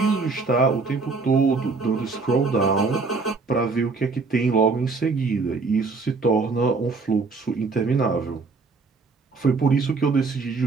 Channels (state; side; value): quieter; left; 4.3 dB